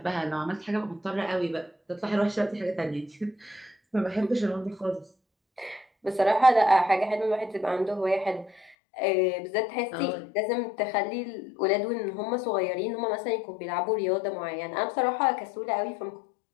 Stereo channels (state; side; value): drops out; right; at 8.8 s